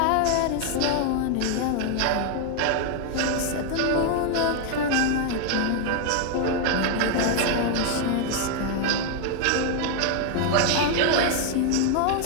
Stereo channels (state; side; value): different; both; correlation 0.00